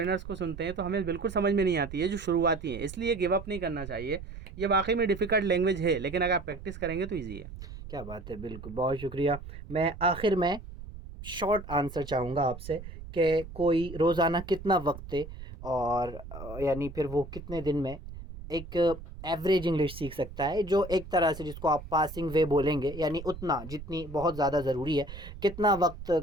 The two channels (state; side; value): noise; right; rumble, 12 dB below the sound